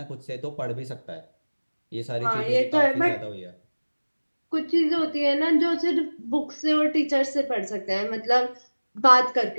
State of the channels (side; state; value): both; inverted; correlation -1.00